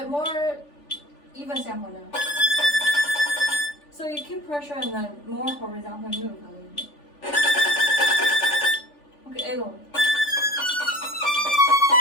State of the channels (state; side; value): late; right; 3.4 ms